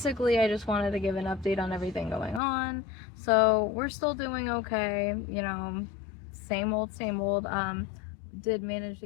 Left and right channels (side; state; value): right; drops out; at 2.4 s